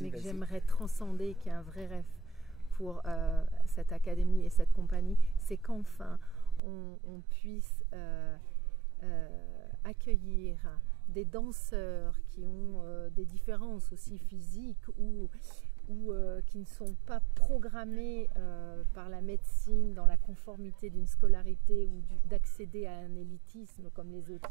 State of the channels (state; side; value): drops out; left; at 6.6 s